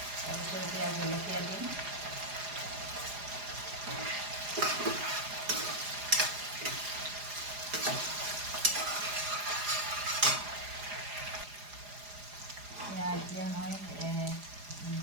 তাৰপিছত এতিয়া জলকীয়া দিম। এতিয়া মই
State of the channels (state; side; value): late; left; 4.9 ms